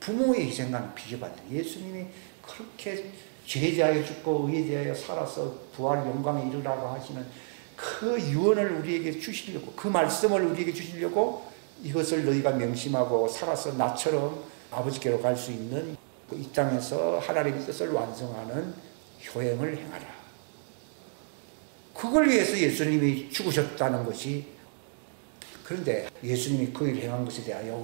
부모의 희생과는 비교가 안 돼요. 예수님이 그렇게 죄에 대하여 죽고 의에 대하여 살아서 부활 영광에 이르라고 하시는 그 유언을 우리에게 주시려고, 그 말씀을 우리에게 주시려고 이것을 너희가 명심하고 살아서 나처럼 아버지께로 갈 수 있는 이 땅에서 하나님의 뜻을 완성하는 효행을 행하라. 그걸 위해서 예수님이 죽으셨다는 것이, 그런데 예수님이 그 일을 행한 것에 대하여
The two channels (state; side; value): silent; left; 58 dB below the other